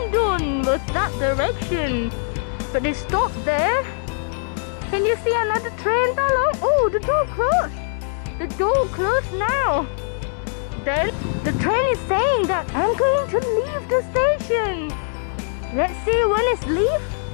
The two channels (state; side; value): silent; right; digital silence